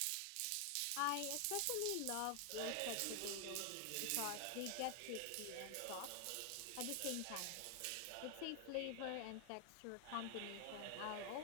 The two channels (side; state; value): both; different; correlation 0.00